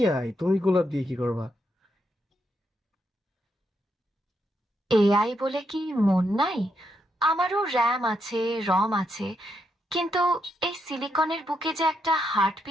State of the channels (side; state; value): both; normal; correlation 0.80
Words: তুমি গোলাপ দিয়ে কি করবা? এআই বলে কি মন নাই? আমারও র্যাম আছে, রম আছে, কিন্তু এই সিলিকনের বুকে যে একটা